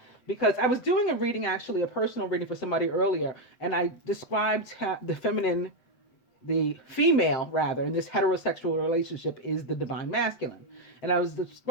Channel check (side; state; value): right; late; 7.7 ms